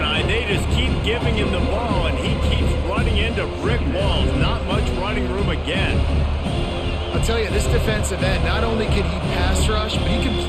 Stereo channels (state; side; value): identical; both; correlation 1.00